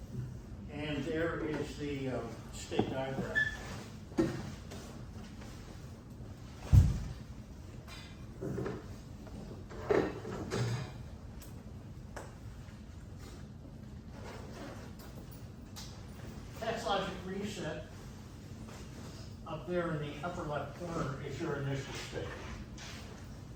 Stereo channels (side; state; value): both; identical; correlation 1.00